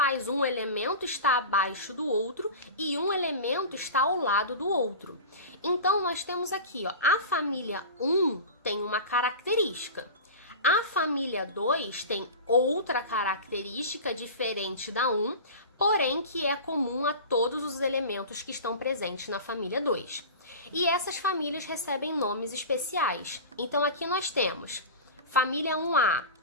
um elemento estar abaixo do outro e um elemento estar ao lado do outro. Então, nós temos aqui, ó, a família 1 tem uma característica. A família 2 tem outra característica diferente da 1, porém que é comum a todos os elementos que estão presentes na família 2. E essas famílias recebem nomes especiais. Então aqui nós temos família 1A,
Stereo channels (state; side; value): inverted; both; correlation -0.31